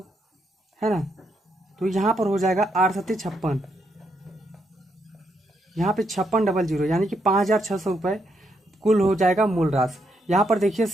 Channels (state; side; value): normal; both; correlation 0.78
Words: है ना, तो यहाँ पर हो जाएगा 8 7 56, यहाँ पे 5600, यानी कि 5600 रुपये कुल हो जाएगा मूल राशि। यहाँ पर देखिए